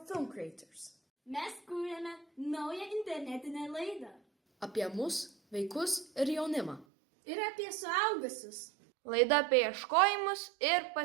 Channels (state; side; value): drops out; left; at 6.9 s